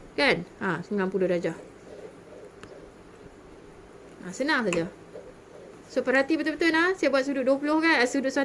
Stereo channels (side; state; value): both; identical; correlation 1.00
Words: Kan? 90 darjah. Senang saja. So perhati betul-betul saya buat sudut 20 kan? Sudut